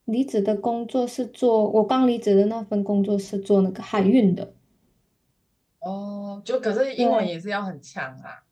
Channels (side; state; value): both; identical; correlation 1.00